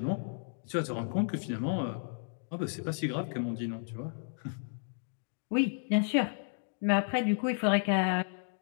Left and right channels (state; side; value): silent; right; digital silence